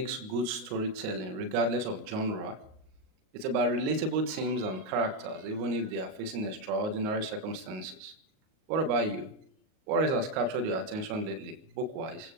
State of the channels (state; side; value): late; left; 38 ms